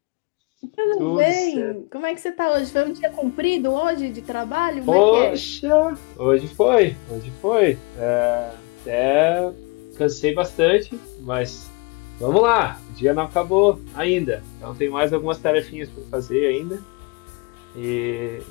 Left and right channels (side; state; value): right; quieter; 28.6 dB